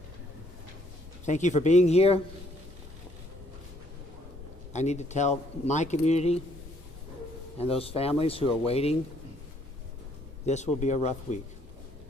Thank you for being here. I need to tell my community and those families who are waiting, this will be a rough week.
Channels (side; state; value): both; normal; correlation 0.66